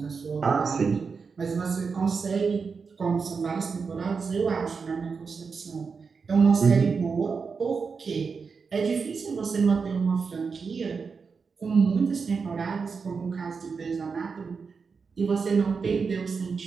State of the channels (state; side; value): quieter; left; 5.2 dB